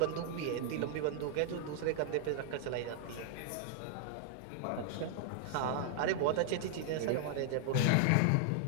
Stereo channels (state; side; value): different; both; correlation -0.01